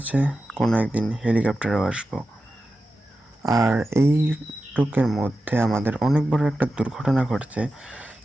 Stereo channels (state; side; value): normal; both; correlation 0.92